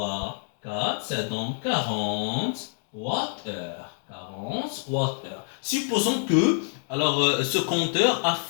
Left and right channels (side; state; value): right; silent; 60 dB below the other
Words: 4, ça donne 40 Wh. 40 Wh. Supposons que, alors, ce compteur a